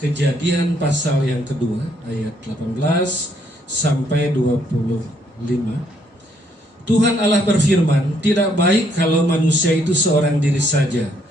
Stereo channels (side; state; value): both; normal; correlation 0.70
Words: pasal yang kedua ayat 18 sampai 25. Tuhan Allah berfirman, tidak baik kalau manusia itu seorang diri saja.